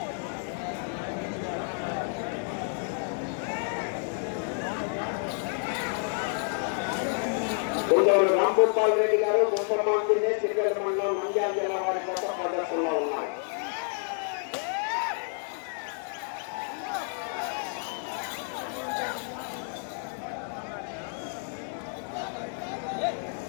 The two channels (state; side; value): silent; right; 58 dB below the other